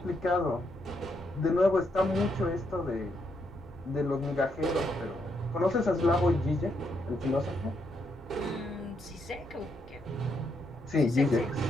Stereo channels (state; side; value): normal; both; correlation 0.78